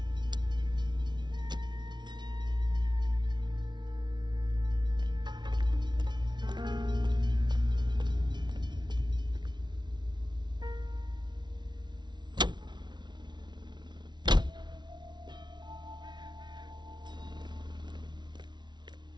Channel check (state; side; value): late; left; 0.21 ms